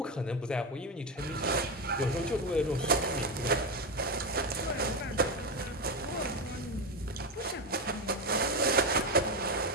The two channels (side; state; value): both; normal; correlation 0.13